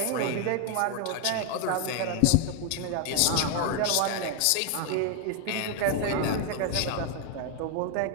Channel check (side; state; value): both; different; correlation 0.00